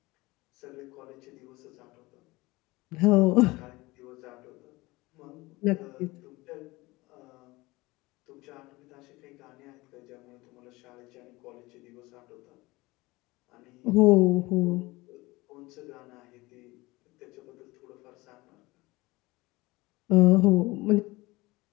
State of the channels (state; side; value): quieter; right; 21.5 dB